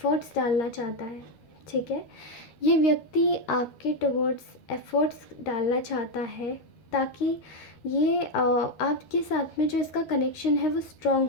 डालना चाहता है, ठीक है। ये व्यक्ति आपके टुवर्ड्स एफ़र्ट्स डालना चाहता है ताकि ये आपके साथ में जो इसका कनेक्शन है वो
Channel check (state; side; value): late; right; 12 ms